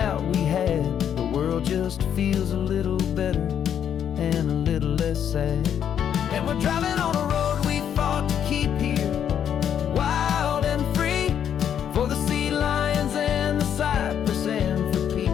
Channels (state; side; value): quieter; right; 9.0 dB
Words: we had, the world just feels a little better and a little less sad. And we're driving on a road we fought to keep here, wild and free, for the sea lions and the cypress and for